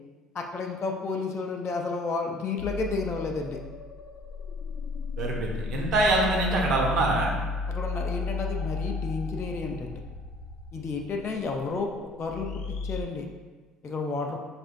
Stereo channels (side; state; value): both; normal; correlation 0.53